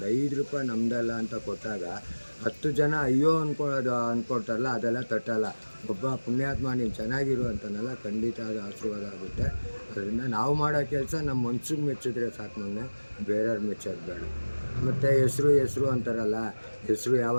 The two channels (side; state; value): both; inverted; correlation -1.00